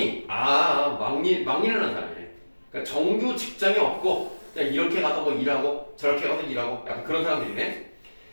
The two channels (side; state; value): both; inverted; correlation -1.00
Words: 막일하는 사람이네. 그러니까 정규 직장이 없고 그냥 이렇게 가서 뭐 일하고 저렇게 가서 일하고 약간 그런 사람들이네.